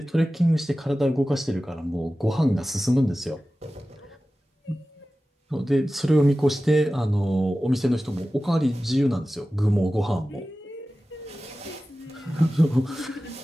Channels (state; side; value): normal; both; correlation 0.95